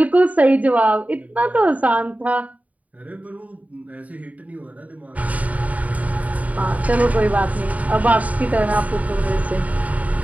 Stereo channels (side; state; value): left; late; 0.071 ms